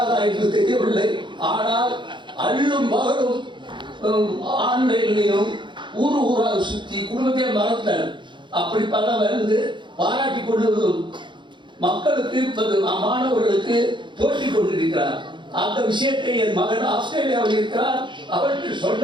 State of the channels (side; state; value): left; late; 0.23 ms